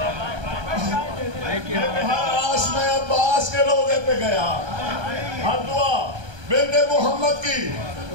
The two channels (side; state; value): left; late; 1.3 ms